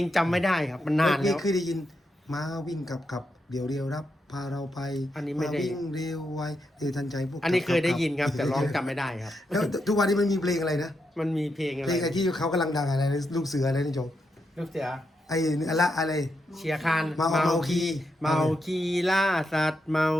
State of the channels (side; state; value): both; normal; correlation 0.83